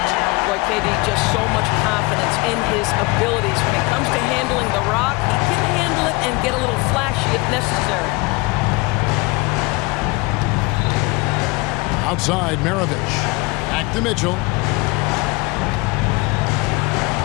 Boy, KD just so much confidence in his abilities. When it comes to handling the rock, he can handle it and get a little flashy if necessary. Outside, Maravich. Back to Mitchell.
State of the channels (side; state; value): right; quieter; 24.9 dB